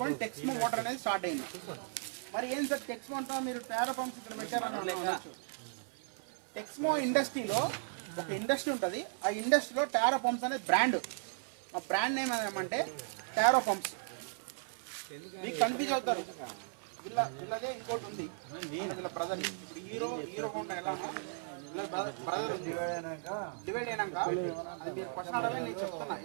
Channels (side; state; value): left; silent; 54 dB below the other